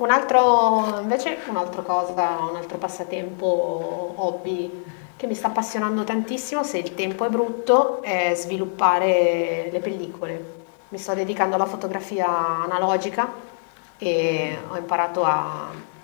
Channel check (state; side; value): silent; right; 63 dB below the other